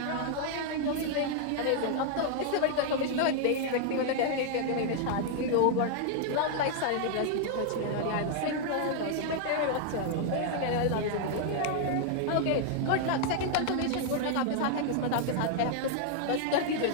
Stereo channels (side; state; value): both; different; correlation 0.00